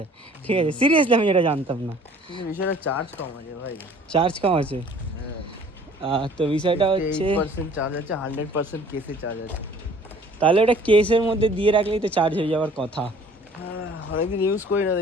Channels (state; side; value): normal; both; correlation 0.52